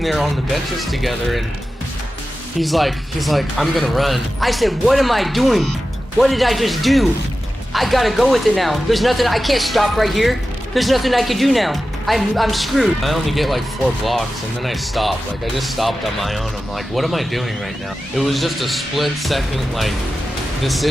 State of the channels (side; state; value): both; normal; correlation 0.93